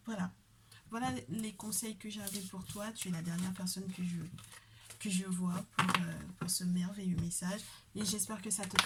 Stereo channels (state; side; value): identical; both; correlation 1.00